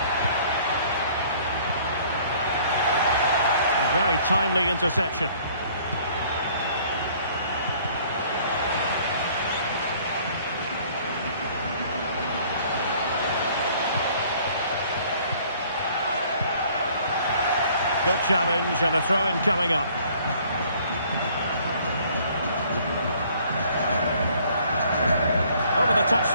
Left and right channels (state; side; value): inverted; both; correlation -0.57